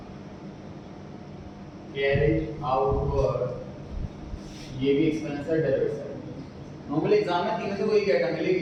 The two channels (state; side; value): identical; both; correlation 1.00